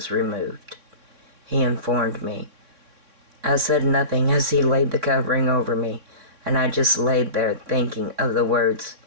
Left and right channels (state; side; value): late; left; 3.6 ms